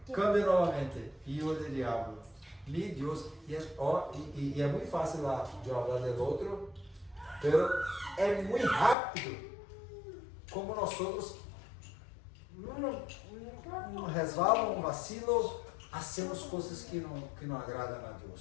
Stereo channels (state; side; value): drops out; right; at 9.0 s